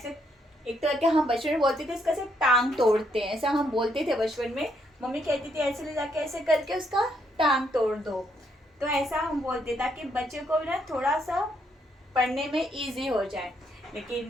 एक तरह के हम बचपन में बोलते थे इसका ऐसे टांग तोड़ते हैं, ऐसा हम बोलते थे बचपन में। मम्मी कहती थी ऐसे ले जाके ऐसे करके उसका टांग तोड़ दो। तो ऐसा हम बोलते ताकि बच्चे को ना थोड़ा सा पढ़ने में इजी हो जाए।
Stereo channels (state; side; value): normal; both; correlation 0.74